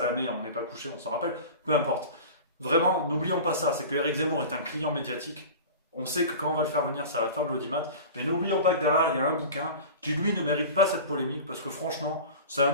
on n'est pas couché, on s'en rappelle, peu importe. Vraiment, n'oublions pas ça, c'est que Éric Zemmour est un client médiatique. On sait que quand on va le faire venir, ça va faire de l'audimat, mais n'oublions pas que derrière, il y a un bouquin qui, lui, ne mérite pas cette polémique, parce que franchement, c'est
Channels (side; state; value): both; inverted; correlation -0.35